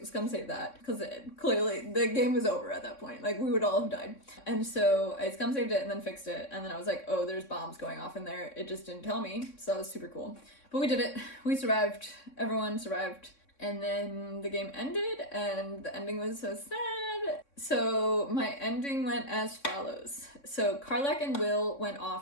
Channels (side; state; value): right; late; 3.6 ms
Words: scum save that, because clearly the game was over at that point. Like, we would all have died. And so I scum saved it and then fixed it, and then I was like, oh, there's bombs going off in there. It just didn't tell me, so that was super cool. But we did it. We survived. Everyone survived. And then the game ended, and the ending was so sad. So my ending went as follows. So Karlach and Will went